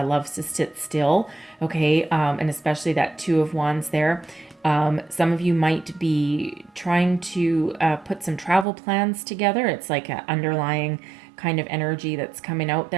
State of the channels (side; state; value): left; drops out; at 8.7 s